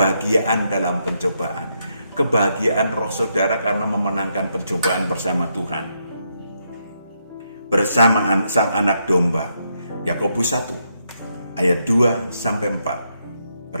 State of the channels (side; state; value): both; inverted; correlation -0.79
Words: dalam pencobaan. Kebahagiaan roh saudara karena memenangkan pencobaan bersama Tuhan. Bersama Sang Anak Domba. Yakobus 1 ayat 2 sampai 4.